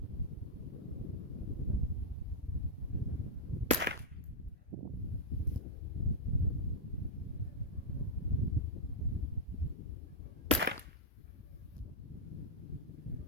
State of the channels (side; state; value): both; normal; correlation -0.04